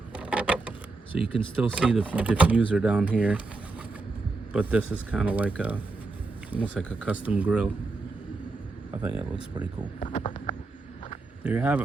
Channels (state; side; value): quieter; left; 3.6 dB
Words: so you can still see the diffuser down here, but this is kind of like almost like a custom grill. I think it looks pretty cool. There you have